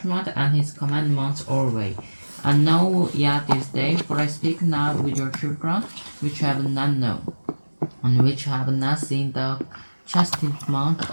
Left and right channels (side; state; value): both; inverted; correlation -1.00